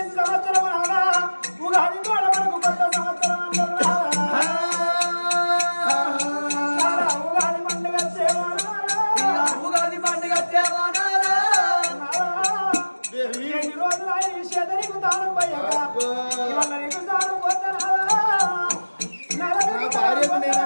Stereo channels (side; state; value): both; inverted; correlation -1.00